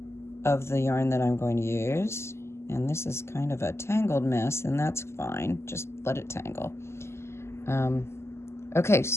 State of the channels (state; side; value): late; right; 0.13 ms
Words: of the yarn that I'm going to use. And this is kind of a tangled mess, and that's fine. Just let it tangle. Okay,